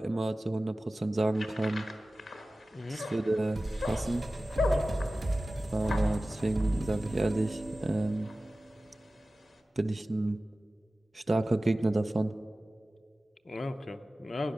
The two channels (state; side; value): normal; both; correlation 0.96